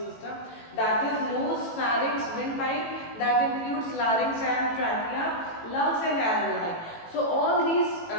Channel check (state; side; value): late; right; 18 ms